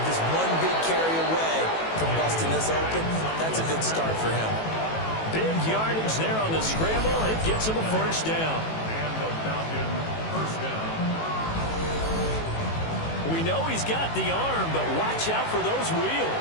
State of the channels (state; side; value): late; right; 18 ms